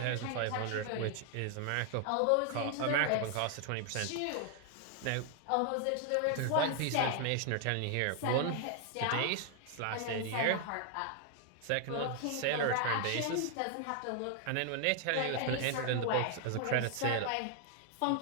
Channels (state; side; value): different; both; correlation 0.00